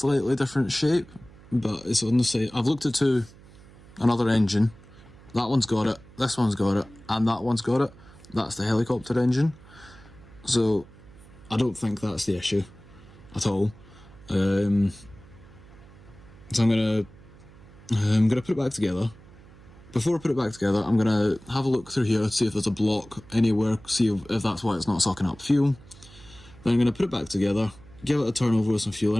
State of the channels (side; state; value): right; noise; hum, 22 dB below the sound